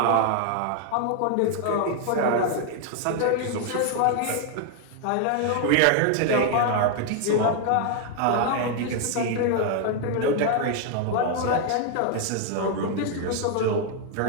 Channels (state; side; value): different; both; correlation 0.00